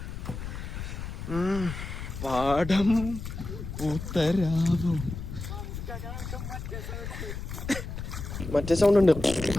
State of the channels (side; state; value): left; noise; rumble, 7 dB below the sound